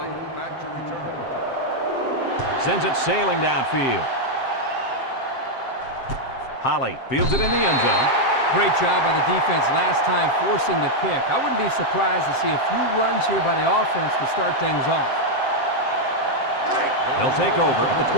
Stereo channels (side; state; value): right; late; 7.6 ms